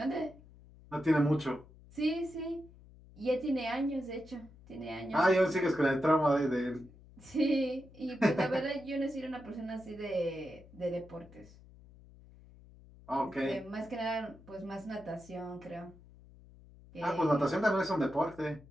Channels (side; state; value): left; noise; hum, 22 dB below the sound